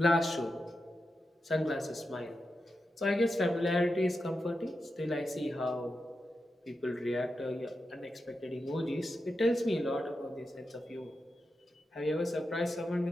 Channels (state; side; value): normal; both; correlation 0.89